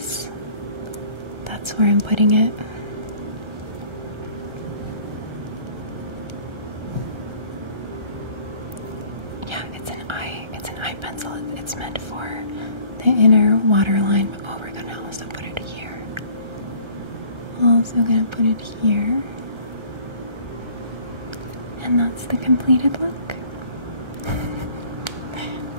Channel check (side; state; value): left; late; 1.3 ms